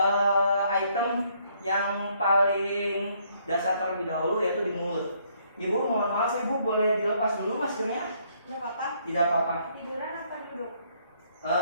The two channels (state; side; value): inverted; both; correlation -0.68